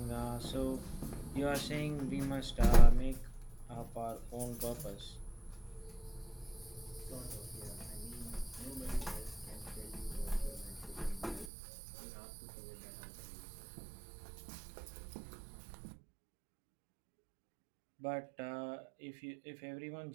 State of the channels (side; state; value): left; drops out; at 11.5 s